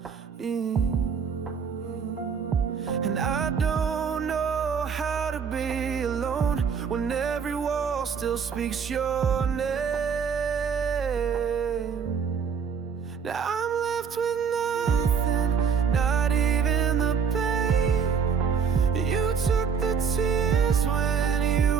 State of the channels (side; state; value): left; quieter; 6.5 dB